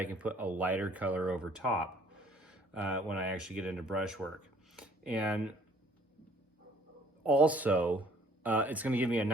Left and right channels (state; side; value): normal; both; correlation 0.58